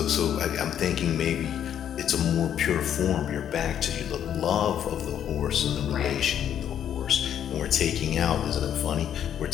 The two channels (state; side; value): quieter; right; 9.7 dB